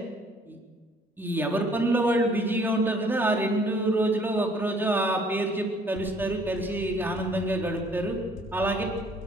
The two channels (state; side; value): normal; both; correlation 0.59